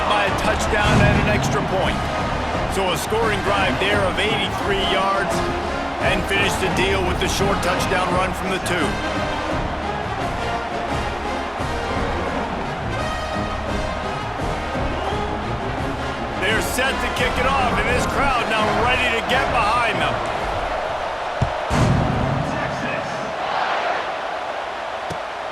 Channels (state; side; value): identical; both; correlation 1.00